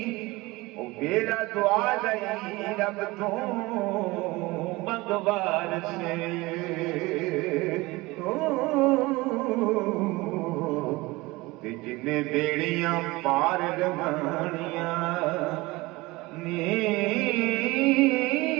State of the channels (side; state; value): left; quieter; 21.7 dB